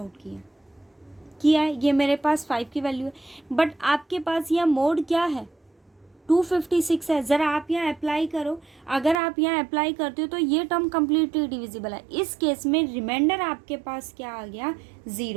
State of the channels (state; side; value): drops out; left; at 9.2 s